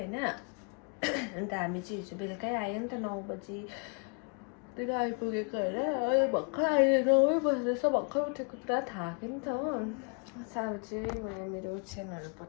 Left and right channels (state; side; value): quieter; right; 37.4 dB